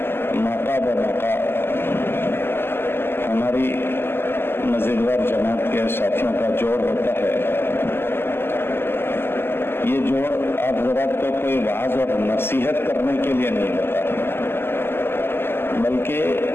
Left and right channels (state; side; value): late; right; 0.11 ms